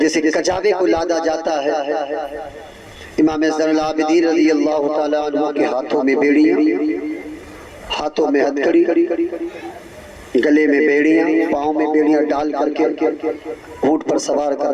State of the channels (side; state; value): both; identical; correlation 1.00